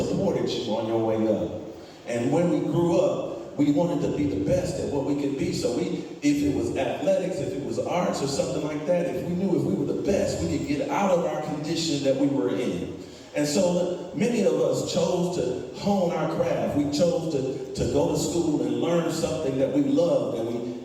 you on your way up. And when we grew up, we wanted to be the best at what we could be. So if it was athletics, if it was arts or something like that, if we knew if we were the best, we could get out of our condition that we were in. And so many of us chose to hone our craft. We chose to go to school and learn something that we loved, and we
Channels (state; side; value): identical; both; correlation 1.00